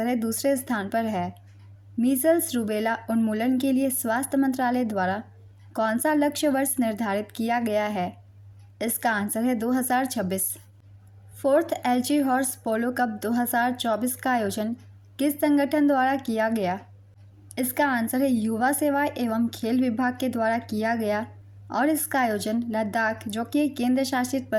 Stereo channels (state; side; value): identical; both; correlation 1.00